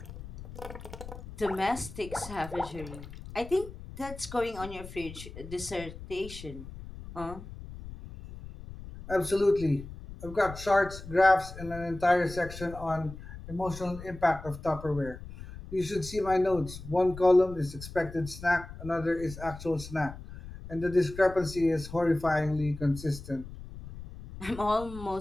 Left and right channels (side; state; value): left; noise; rumble, 13 dB below the sound